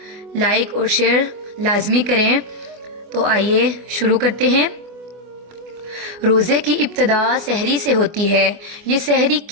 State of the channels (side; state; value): left; late; 24 ms